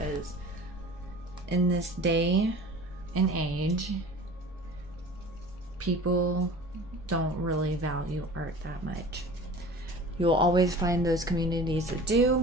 in this day and age, people don't really value art that much. You'll always find those communities that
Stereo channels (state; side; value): normal; both; correlation 0.41